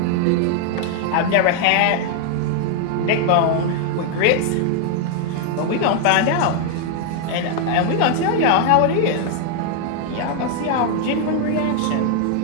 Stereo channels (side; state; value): both; different; correlation 0.00